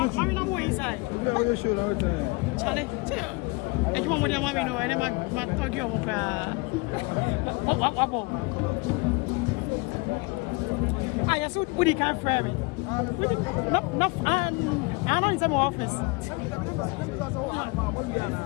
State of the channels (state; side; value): quieter; right; 26.8 dB